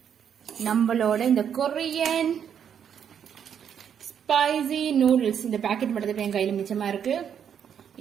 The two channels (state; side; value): quieter; left; 8.3 dB